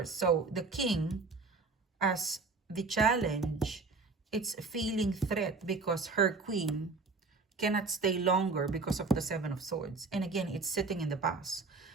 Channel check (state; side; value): quieter; left; 4.0 dB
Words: So the King, as the challenge, it's feeling threat because her Queen cannot stay longer because of the Seven of Swords. And again, it's sitting in the past.